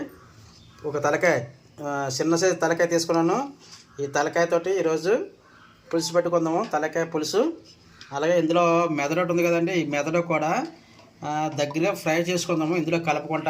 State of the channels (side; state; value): both; identical; correlation 1.00